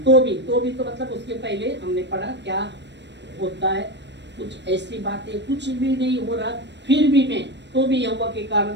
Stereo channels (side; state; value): left; late; 0.51 ms